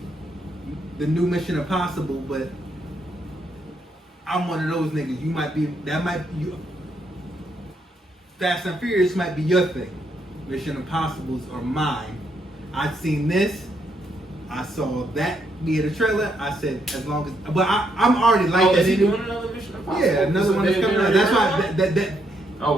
the new Mission Impossible, but I'm one of those niggas. Fast and Furious might be your thing. Mission Impossibles are mine. I've seen this. I saw that be in the trailer. I said, as long as, but I'm already like that. Is he doing another Mission Impossible? Yeah, another one that's coming out. That's why that. Oh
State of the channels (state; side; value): normal; both; correlation 0.76